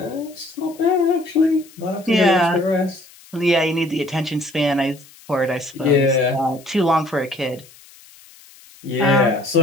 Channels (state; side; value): noise; left; hiss, 24 dB below the sound